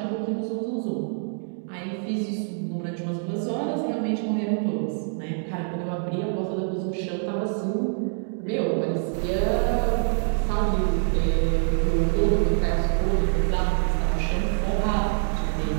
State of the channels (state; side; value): silent; left; 61 dB below the other